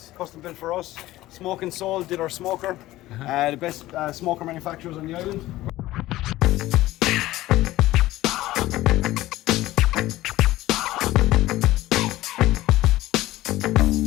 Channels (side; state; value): right; quieter; 16.4 dB